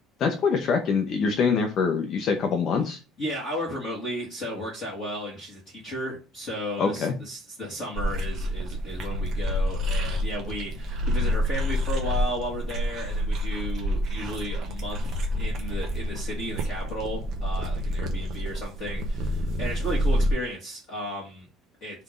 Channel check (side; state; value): both; normal; correlation 0.63